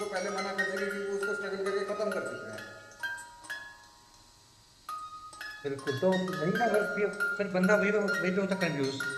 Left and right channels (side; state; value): both; identical; correlation 1.00